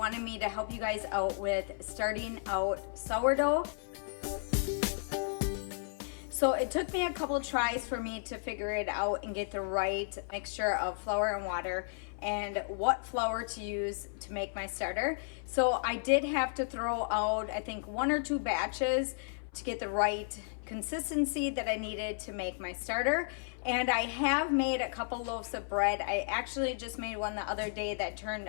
me to help you guys out with starting out sourdough. So it took me a couple tries for me to figure it out and get the right mixture of flour and water and what flour to use to make my starter. So I did have to throw out, I think, 1 or 2 batches to get the right consistency that I needed to make my starter. And I have made a couple loaves of bread. I actually just made one the other day that turned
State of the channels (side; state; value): right; silent; 55 dB below the other